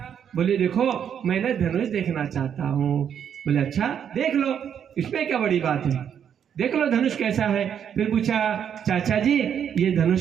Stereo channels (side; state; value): left; quieter; 8.5 dB